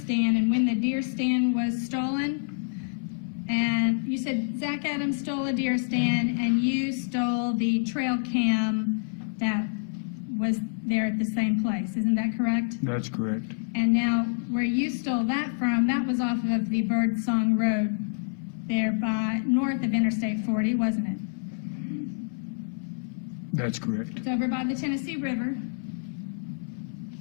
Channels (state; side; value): silent; right; 57 dB below the other